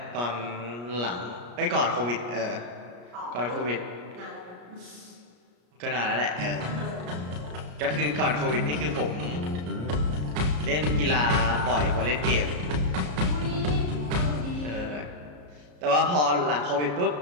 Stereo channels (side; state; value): left; late; 34 ms